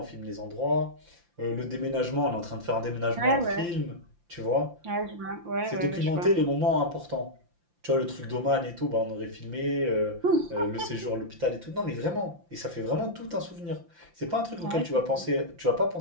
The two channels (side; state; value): left; late; 5.8 ms